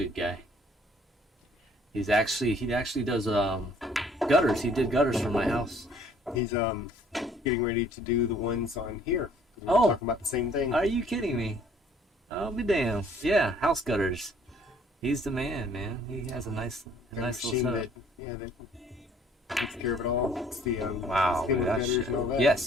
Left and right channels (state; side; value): normal; both; correlation 0.58